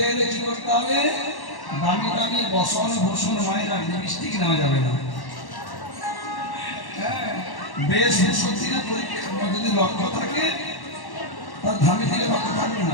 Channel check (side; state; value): right; late; 1.1 ms